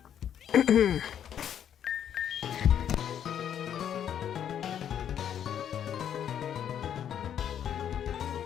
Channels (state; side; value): quieter; right; 9.4 dB